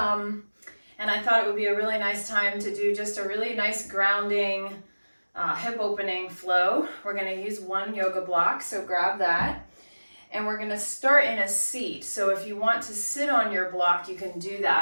I thought it would be a really nice time to do just a really nice grounding hip opening flow. We're going to use one yoga block, so grab that. And we're going to start in a seat. So if you want to sit on your block, you can do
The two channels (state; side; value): inverted; both; correlation -1.00